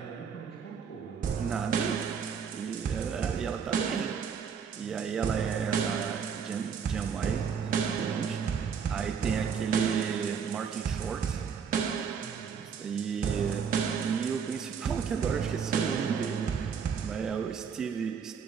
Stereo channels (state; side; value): quieter; left; 6.7 dB